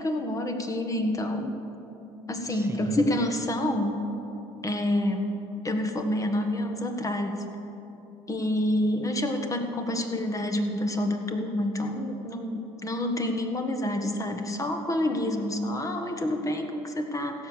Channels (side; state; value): both; normal; correlation 0.65